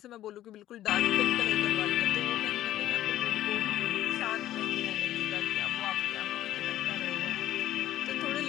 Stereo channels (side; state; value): right; quieter; 13.3 dB